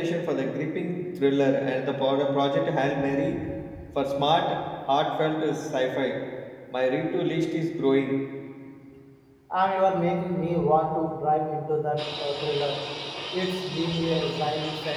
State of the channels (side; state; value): both; identical; correlation 1.00